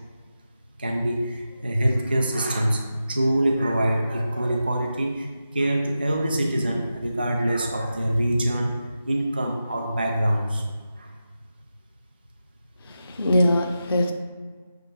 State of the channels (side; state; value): both; inverted; correlation -0.90